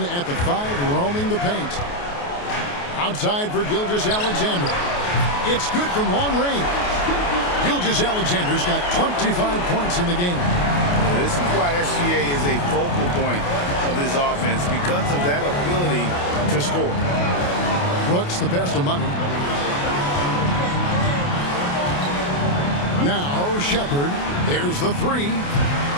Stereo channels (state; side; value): late; right; 28 ms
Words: at the 5, roaming the paint. Outside for Gilgeous-Alexander. It's good from long range. Gilgeous-Alexander's got 25 points in the game. This is why SGA is a focal point of this offense, because of that ability to score. Brooks, the pass to Money. Now Shepard. There's the 3.